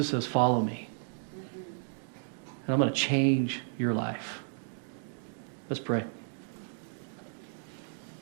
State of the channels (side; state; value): left; silent; digital silence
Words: says, follow me. And I'm going to change your life. Let's pray.